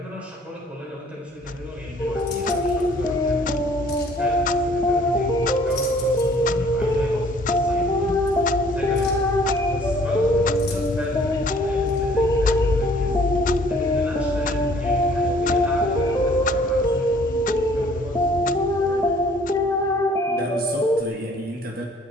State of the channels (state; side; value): normal; both; correlation 0.57